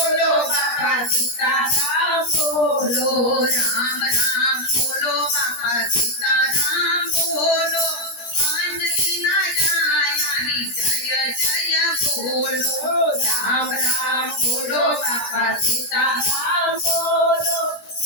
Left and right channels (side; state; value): right; late; 17 ms